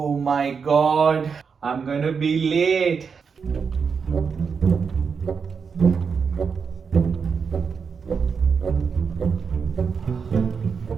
my god, I'm gonna be late.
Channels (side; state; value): left; quieter; 5.9 dB